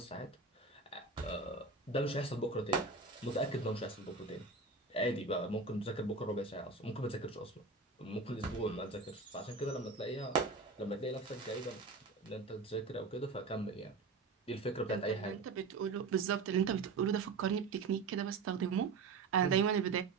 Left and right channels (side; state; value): left; quieter; 4.2 dB